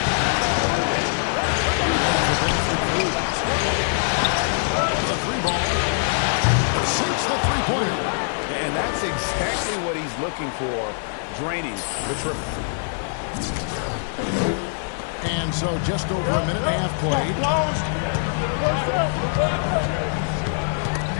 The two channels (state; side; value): silent; right; 63 dB below the other